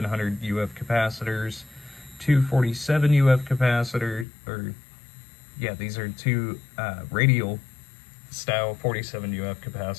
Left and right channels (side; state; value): right; drops out; at 4.2 s